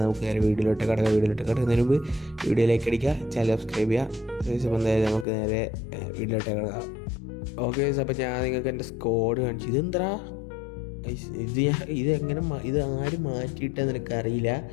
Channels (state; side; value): drops out; right; at 5.2 s